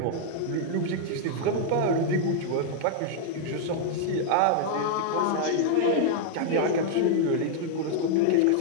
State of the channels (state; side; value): different; both; correlation 0.00